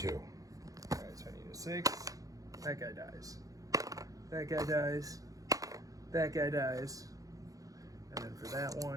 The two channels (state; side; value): late; left; 0.17 ms